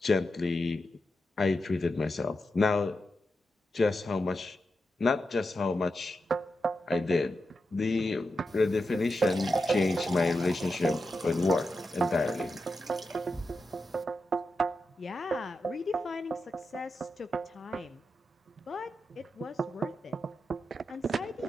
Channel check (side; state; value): both; normal; correlation 0.89